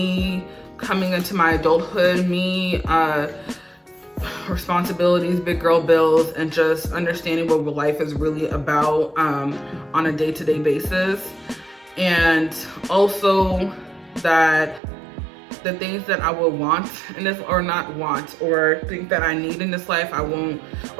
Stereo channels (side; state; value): left; drops out; at 14.8 s